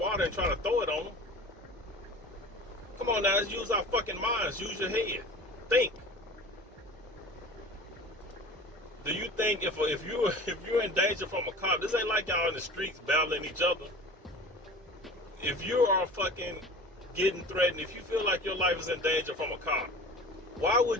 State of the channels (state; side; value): normal; both; correlation 0.38